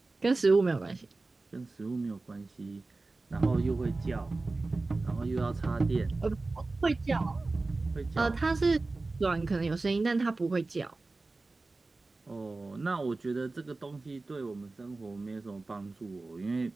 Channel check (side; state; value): left; quieter; 3.4 dB